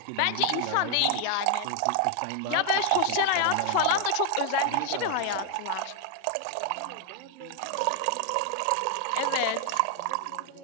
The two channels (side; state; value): both; different; correlation 0.00